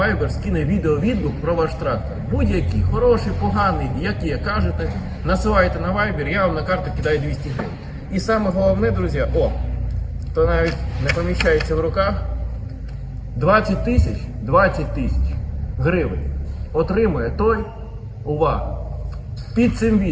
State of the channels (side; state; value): both; identical; correlation 1.00